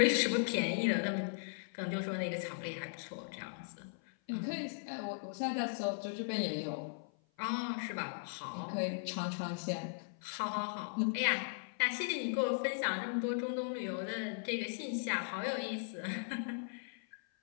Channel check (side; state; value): right; silent; 53 dB below the other